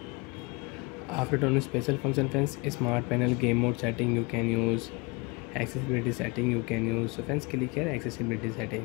After turning special function friends, smart panel game mode setting you can use, accessibility setting you can use. So friends, click here accessibility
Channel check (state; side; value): quieter; right; 27.9 dB